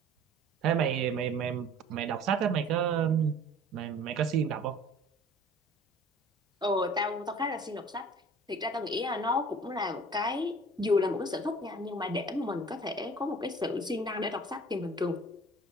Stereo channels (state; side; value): normal; both; correlation 0.47